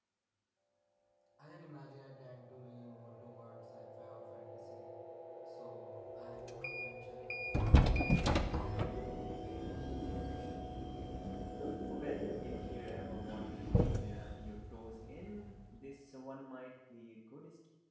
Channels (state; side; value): identical; both; correlation 1.00